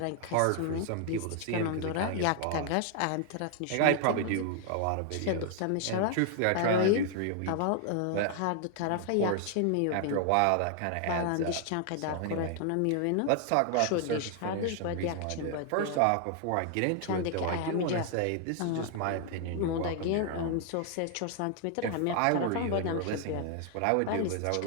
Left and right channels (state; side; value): different; both; correlation 0.00